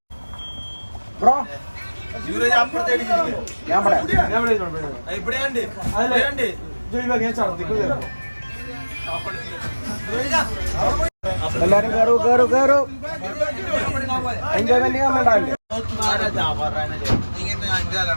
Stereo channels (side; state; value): both; inverted; correlation -1.00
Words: ബ്രോ എല്ലാരും കേറൂ. എൻജോയ്മെന്റ് ചെയ്യാൻ വേണ്ടല്ലേ?